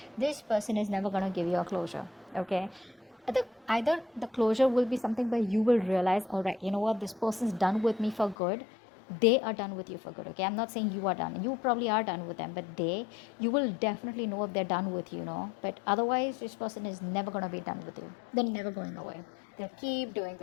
this person is never going to give you a closure. Okay, either the closure will be something where you will realize, all right, you know what, this person's done with me for good. They are done with you for good. Okay, I'm not saying you are done. You probably are done with them, but you will definitely know if they're done with you, but otherwise this person is never going to be done with you. They're never going away. They'll keep doing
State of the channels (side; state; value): right; drops out; at 8.3 s